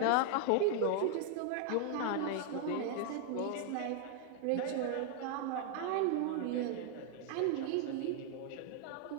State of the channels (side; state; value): both; different; correlation 0.00